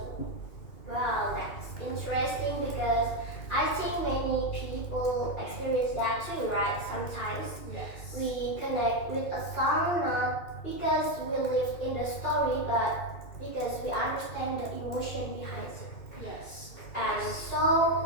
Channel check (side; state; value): right; late; 2.4 ms